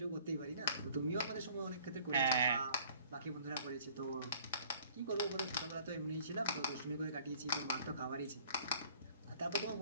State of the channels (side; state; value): both; inverted; correlation -0.54